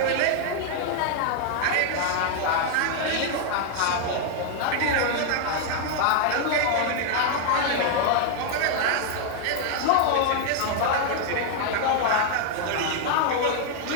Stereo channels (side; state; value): both; different; correlation 0.00